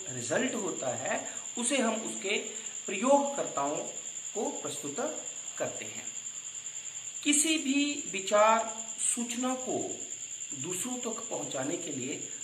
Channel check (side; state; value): both; identical; correlation 1.00